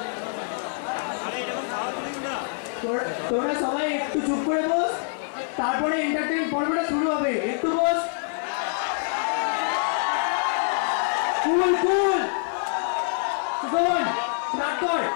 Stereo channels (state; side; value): silent; right; digital silence